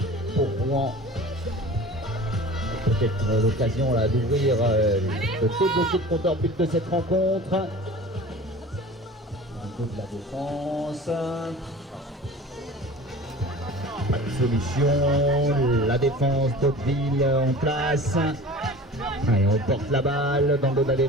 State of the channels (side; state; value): both; normal; correlation 0.39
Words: Pour Rouen. Peut-être l'occasion là d'ouvrir, de débloquer le compteur but de cette rencontre. Un coup de la défense. Pas de solution. La défense d'Hauteville en place. Allez, on porte la balle dans le dos de la